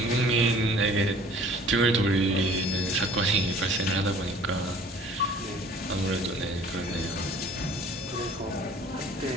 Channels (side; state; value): both; normal; correlation 0.51